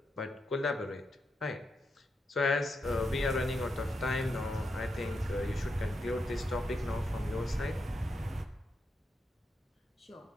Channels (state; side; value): normal; both; correlation 0.84